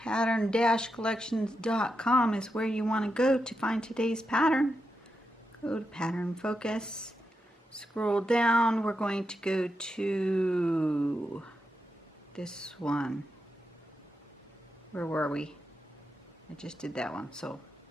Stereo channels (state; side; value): normal; both; correlation 0.86